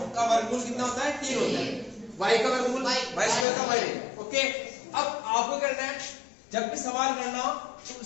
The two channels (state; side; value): drops out; right; at 3.5 s